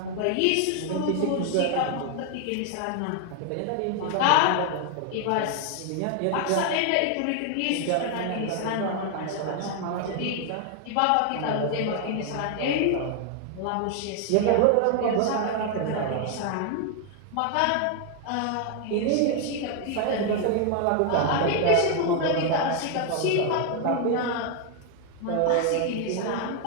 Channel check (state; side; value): different; both; correlation 0.00